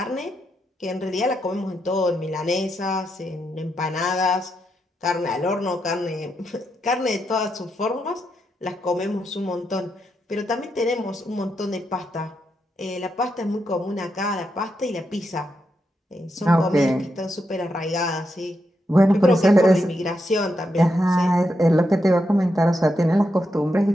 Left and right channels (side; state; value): both; normal; correlation 0.83